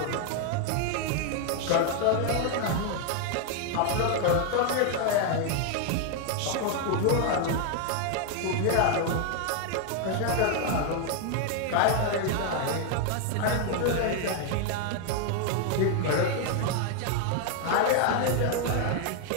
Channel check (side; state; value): both; different; correlation 0.00